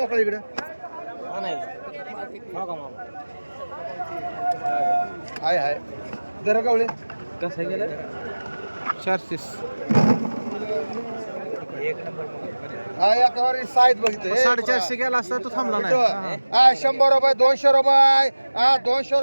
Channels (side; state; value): both; inverted; correlation -1.00